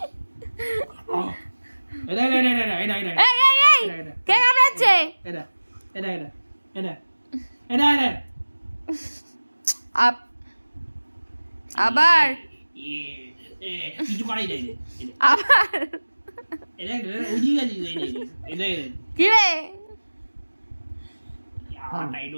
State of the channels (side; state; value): both; inverted; correlation -1.00